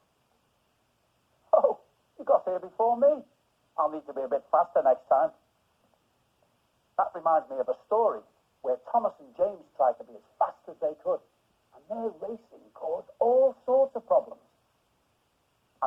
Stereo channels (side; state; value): both; identical; correlation 1.00